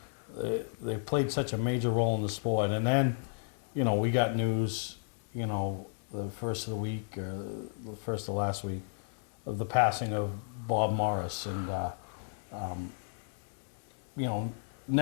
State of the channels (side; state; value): right; silent; 56 dB below the other